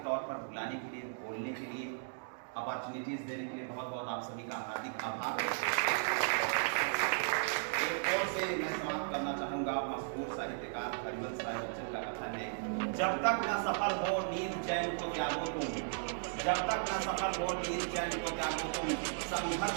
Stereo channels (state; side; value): silent; left; digital silence